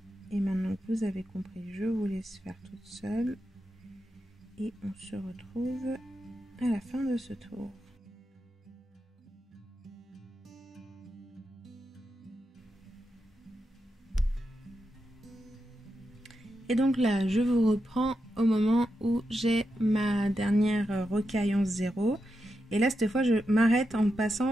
Et maintenant que vous avez compris, je vous laisse faire toute seule. Et on se retrouve à la fin de ce tour. Et donc là, je vous reprends au moment où j'ai ma dernière rocaille 11-0. Et là, cette fois, je m'arrête en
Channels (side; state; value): both; normal; correlation 0.87